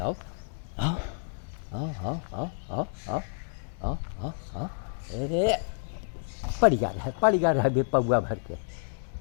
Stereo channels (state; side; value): silent; right; digital silence